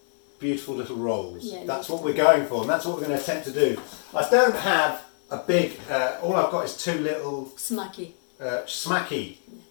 beautiful little rolls. Yeah, that's what we're going for, and that's what we're going to attempt to do. I don't have a big, all I've got is two little Smacky. smacky,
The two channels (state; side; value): silent; right; digital silence